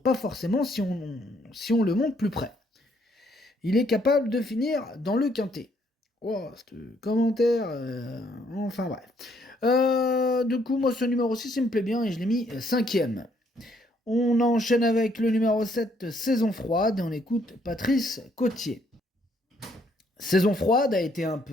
forcément si on le monte plus près. Il est capable de finir dans le quintet. Oh, ce commentaire, enfin bref. Du coup, moi, ce numéro 6, il me plaît bien et je l'ai mis 5ème. On enchaîne avec le numéro 7, Saison froide, et on écoute Patrice Cotier. Saison froide a été un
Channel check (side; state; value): both; normal; correlation 0.69